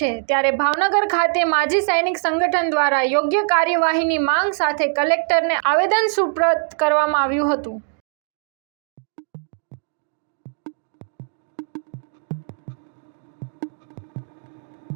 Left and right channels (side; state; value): left; silent; digital silence